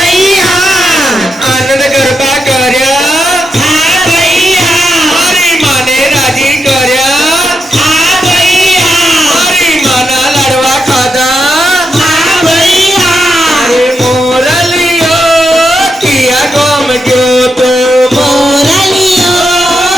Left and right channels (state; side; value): normal; both; correlation 0.84